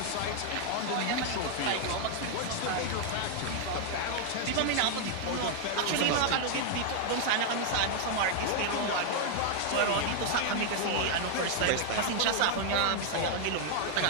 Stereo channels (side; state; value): both; different; correlation 0.00